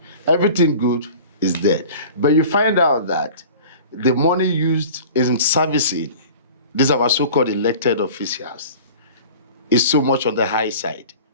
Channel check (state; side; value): inverted; both; correlation -0.41